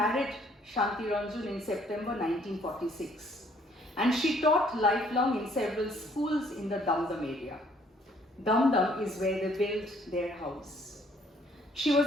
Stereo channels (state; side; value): normal; both; correlation 0.63